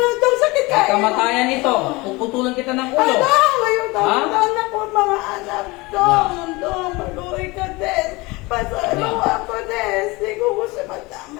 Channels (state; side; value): quieter; right; 23.6 dB